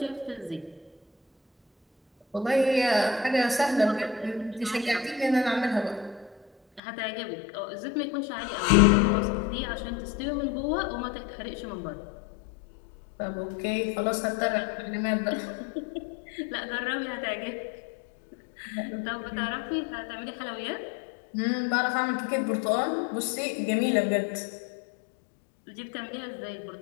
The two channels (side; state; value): right; drops out; at 6.8 s